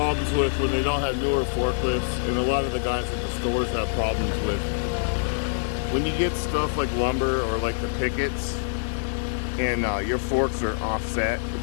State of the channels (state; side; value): silent; right; digital silence